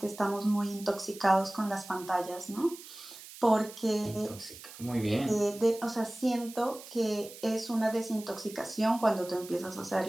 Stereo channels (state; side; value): noise; right; hiss, 16 dB below the sound